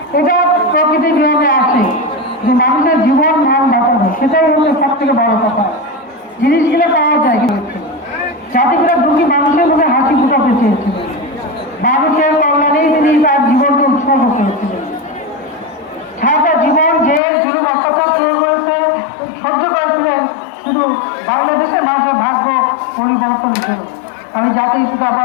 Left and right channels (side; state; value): right; drops out; at 17.2 s